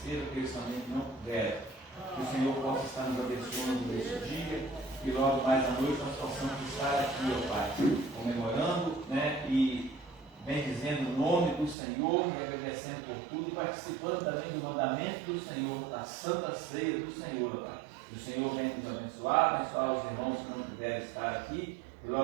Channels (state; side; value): drops out; left; at 11.8 s